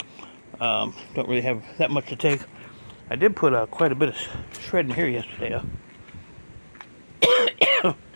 Don't really have that much to take. I did put quite a bit of shred in here yesterday.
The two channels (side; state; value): both; inverted; correlation -1.00